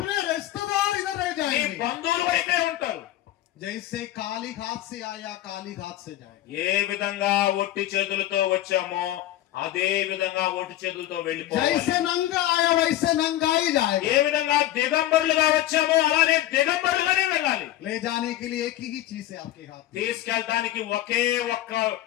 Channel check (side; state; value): right; quieter; 14.1 dB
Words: रिश्तेदार इधर रह నీ जाएंगे. బంధువులు ఇక్కడే ఉంటారు. जैसे काली घाट से आया काली घाट से जाएगा. ఏ విధంగా ఒట్టి చేతులతో వచ్చామో అదే విధంగా ఒట్టి చేతులతో వెళ్ళిపోవాలి. जैसे नंगा आया वैसे नंगा ही जाएगा. ఏ విధంగా దిగంబరులుగా వచ్చామో అలానే దిగంబరులుగానే వెళ్ళాలి. ले जाने के लिए एक ही चीज है आपके हाथ में, తీసుకెళ్ళడానికి ఒకే ఒక్క